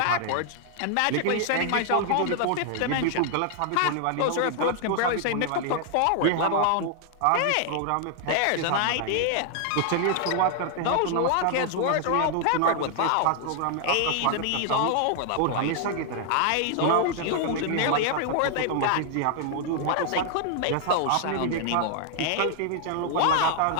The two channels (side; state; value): both; different; correlation 0.00